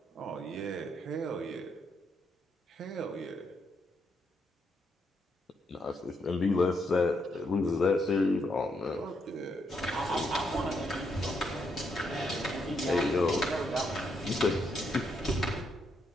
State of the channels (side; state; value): both; normal; correlation 0.77